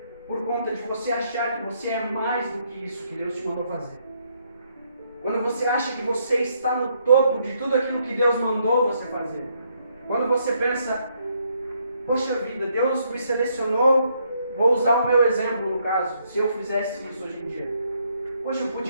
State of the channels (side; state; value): both; inverted; correlation -0.73